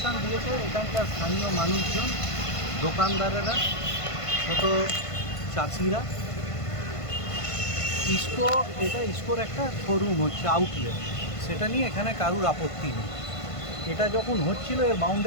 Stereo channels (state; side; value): late; right; 1.5 ms